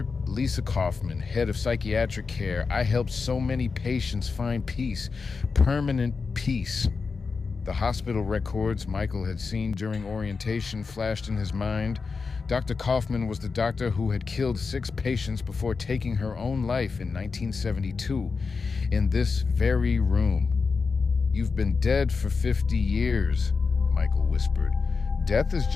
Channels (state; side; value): quieter; right; 4.8 dB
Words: Lisa Kaufman, head of psychiatric care. I helped so many patients find peace, permanent peace." The hospital records Michael had seen during orientation flashed in his mind. Dr. Kaufman was the doctor who had killed 6 patients before taking her own life in 1972, in this very room. "You've been dead for 50 years, Michael whispered. "Death is